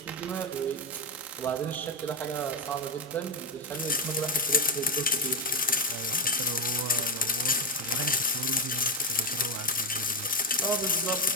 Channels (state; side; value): normal; both; correlation 0.08